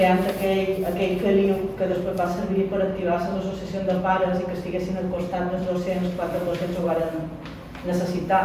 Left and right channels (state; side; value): identical; both; correlation 1.00